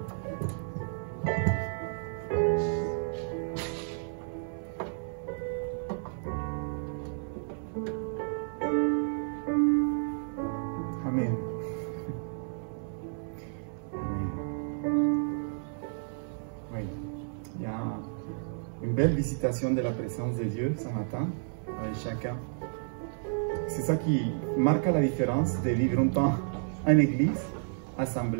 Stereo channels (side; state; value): left; silent; 57 dB below the other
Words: Amen. Oui. Il y a une belle visitation de la présence de Dieu ce matin avec chacun. C'est ça qui marque la différence de vivre un temps en église,